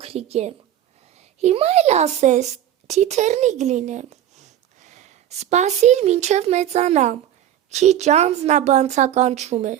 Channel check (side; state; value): left; quieter; 11.3 dB